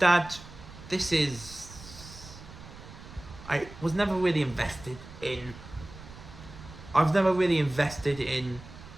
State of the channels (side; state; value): right; noise; rumble, 16 dB below the sound